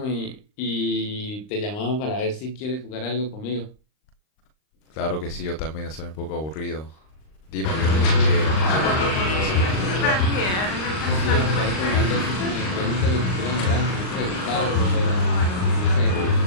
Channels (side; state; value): right; late; 39 ms